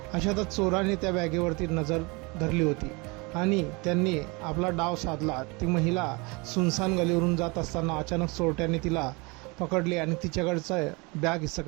अशातच चोराने त्या बॅगेवरती नजर धरली होती आणि त्यांनी आपला डाव साधला। ती महिला सुनसान गलीवरून जात असताना अचानक चोरट्याने तिला पकडले आणि तिच्याकडचा बॅग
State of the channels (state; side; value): quieter; left; 27.4 dB